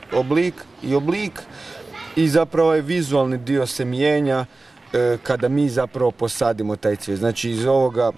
Oblik i zapravo ovaj vizualni dio se mijenja kada mi zapravo posadimo taj cvijet. Znači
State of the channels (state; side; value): quieter; left; 3.3 dB